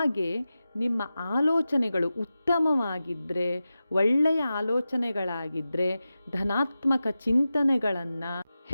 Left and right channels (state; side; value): inverted; both; correlation -0.93